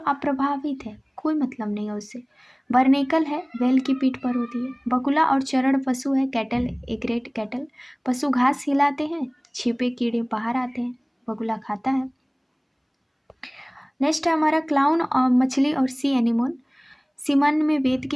अप्रभावित है, कोई मतलब नहीं है उससे। बर्नेकल है, बैल की पीठ पर होती है। बकुला और चरण पशु है, कैटल, एग्रेट कैटल। पशु घास हिलाते हैं, छिपे कीड़े बाहर आते हैं, बकुला खाता है। नेक्स्ट है हमारा क्लाउन और मछली और सी एनिमोन। सीमन में वेद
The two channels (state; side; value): identical; both; correlation 1.00